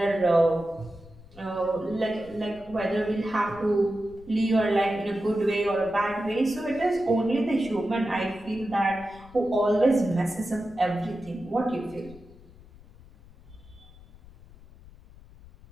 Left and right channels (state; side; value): noise; left; rumble, 22 dB below the sound